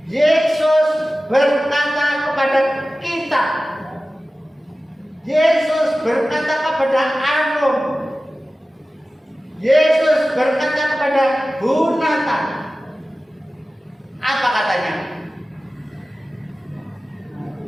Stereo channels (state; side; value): normal; both; correlation 0.96